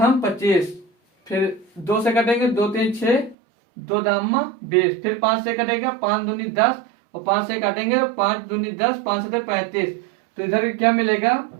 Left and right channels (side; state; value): left; drops out; at 3.4 s